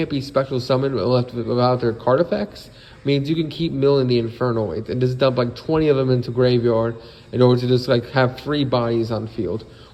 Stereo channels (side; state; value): both; identical; correlation 1.00